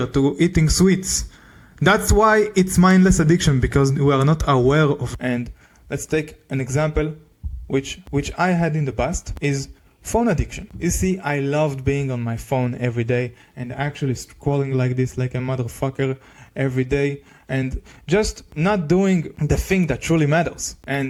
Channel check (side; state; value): both; identical; correlation 1.00